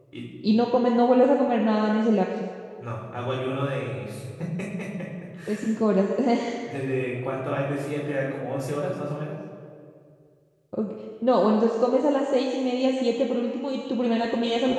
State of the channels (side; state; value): both; identical; correlation 1.00